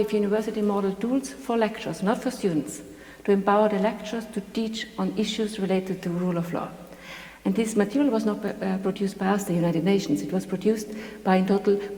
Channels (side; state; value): both; identical; correlation 1.00